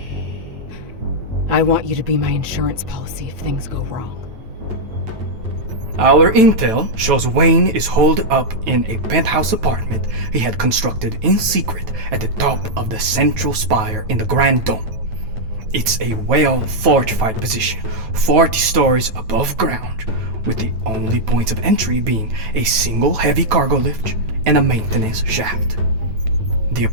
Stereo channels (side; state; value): left; late; 9.2 ms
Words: I want you to be my insurance policy if things go wrong. Our intel shows Wayne is holed up in a penthouse apartment he had constructed in secret at the top of the central spire in the Grand Dome. It's a well-fortified position, 40 stories above ground, with the only points of entry being a single heavy cargo lift and a maintenance shaft. The